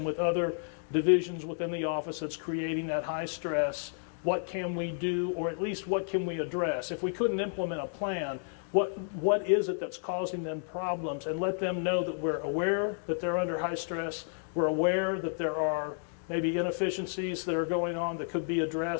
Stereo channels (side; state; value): right; silent; digital silence